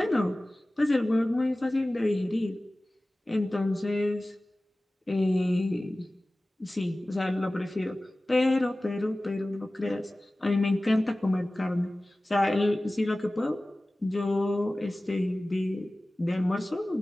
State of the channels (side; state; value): both; normal; correlation 0.97